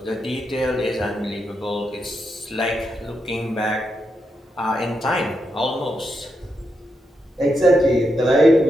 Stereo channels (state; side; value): normal; both; correlation 0.83